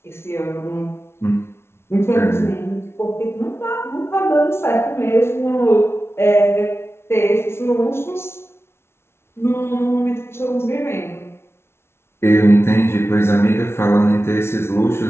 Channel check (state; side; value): late; right; 0.12 ms